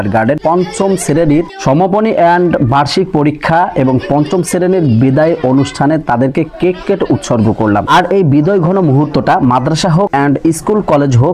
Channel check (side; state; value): both; identical; correlation 1.00